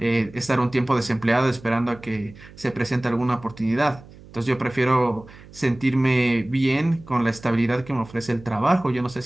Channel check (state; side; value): noise; right; hum, 21 dB below the sound